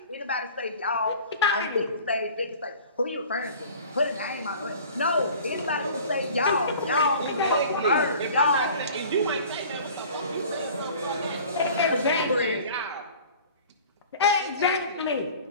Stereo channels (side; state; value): both; inverted; correlation -0.44